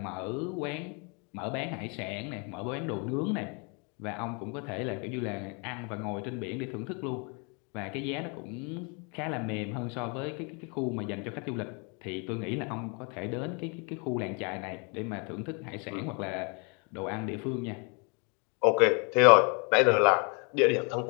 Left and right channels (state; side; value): quieter; right; 33.9 dB